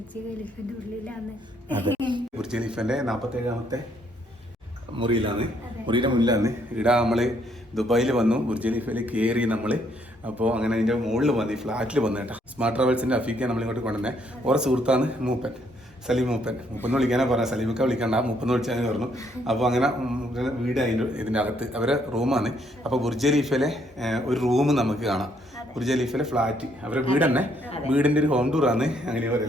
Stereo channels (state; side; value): normal; both; correlation 0.70